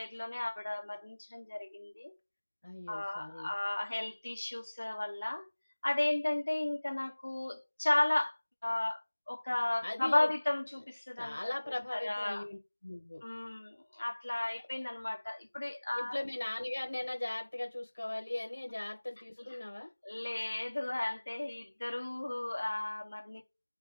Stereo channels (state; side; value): inverted; both; correlation -1.00